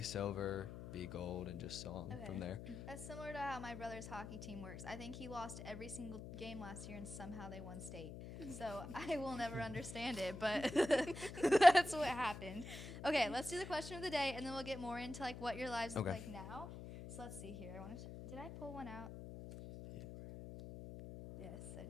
B gold, and just so on Okay. from there. That's similar to how my brother's hockey team works. I think he lost every single game last year, and somehow they won state. So I will never understand it, but that's what happened. Okay, let's do the question of the day, and then we'll get more into like what your lives look Okay. like now. So let's see here. Did I pull one out? Yeah. Yes, I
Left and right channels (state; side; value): noise; left; hum, 10 dB below the sound